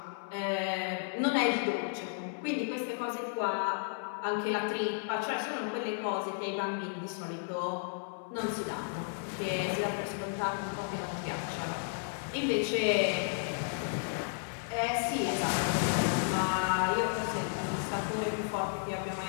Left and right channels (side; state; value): right; silent; 56 dB below the other